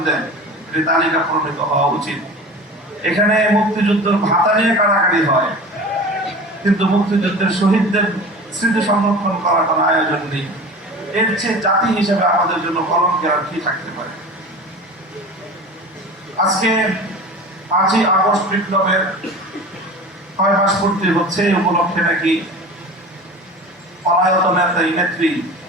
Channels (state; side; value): normal; both; correlation 0.36